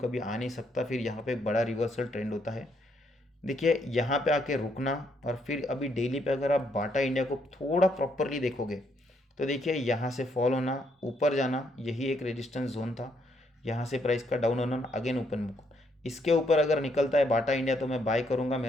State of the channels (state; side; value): normal; both; correlation 0.73